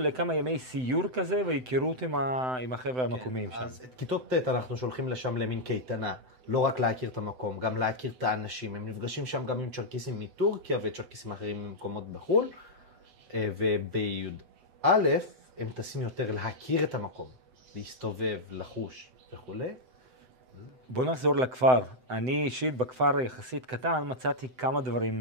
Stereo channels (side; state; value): left; late; 7.9 ms